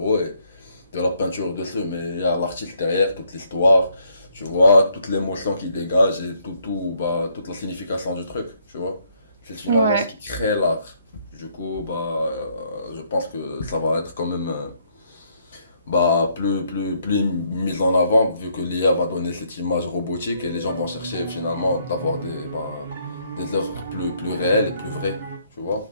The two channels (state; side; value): inverted; both; correlation -0.70